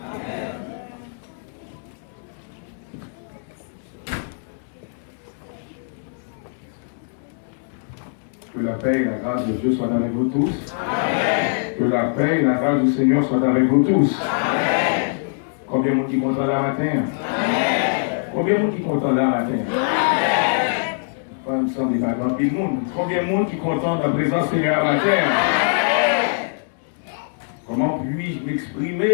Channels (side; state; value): right; silent; digital silence